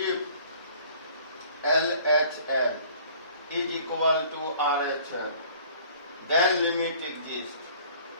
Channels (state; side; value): inverted; both; correlation -0.53